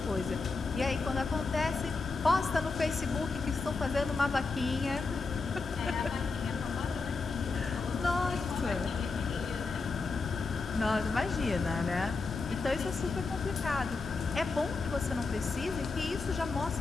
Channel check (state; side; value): quieter; right; 4.1 dB